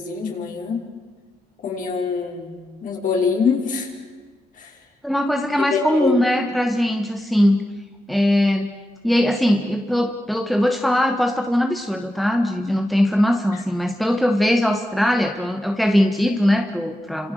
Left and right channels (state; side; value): normal; both; correlation 0.88